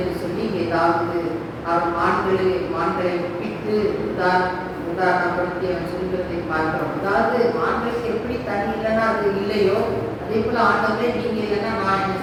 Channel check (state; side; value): identical; both; correlation 1.00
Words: சொல்லி இங்கே தாவீது அவர் மான்களை ஒப்பிட்டு உதாரணப்படுத்தி அவன் சொல்கிறதை பார்க்கிறோம். அதாவது மான்களுக்கு எப்படி தண்ணி இல்லைன்னா அது இல்லையோ அதே போல ஆண்டவரே நீங்க இல்லைன்னா நான் என்ன